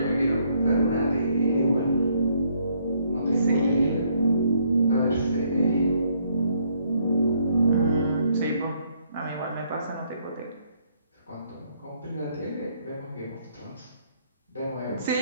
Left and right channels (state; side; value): inverted; both; correlation -0.69